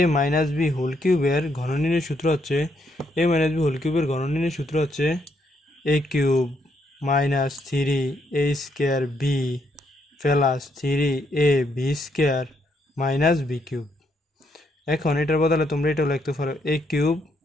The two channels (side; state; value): both; normal; correlation 0.75